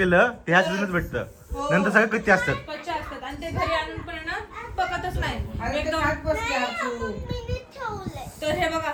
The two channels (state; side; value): identical; both; correlation 1.00